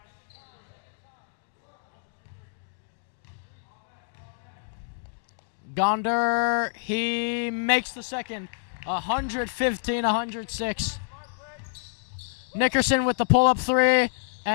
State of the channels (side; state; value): right; silent; digital silence